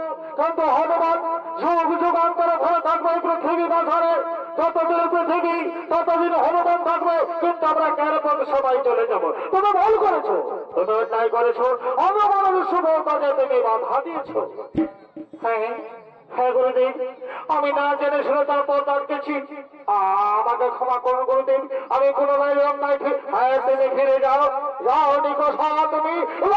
কিন্তু হনুমান যুগ যুগান্তরে ভরে থাকবে পৃথিবী মাঝারে। যতদিন পৃথিবী ততদিন হনুমান থাকবে, কিন্তু আমরা কেন সবাই চলে যাব। তুমি ভুল করেছো, তুমি অন্যায় করেছো, হনুমানের শুভ কাজে তুমি বাধা দিয়েছো। হ্যাঁ হ্যাঁ গুরুদেব, আমি না জেনে শুনে তারপর ডাকতেছি, আমাকে ক্ষমা করুন গুরুদেব, আমি পুনরায় লঙ্কায় তুমি ফিরে যাও। যাও নিকষা, তুমি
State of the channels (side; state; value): both; identical; correlation 1.00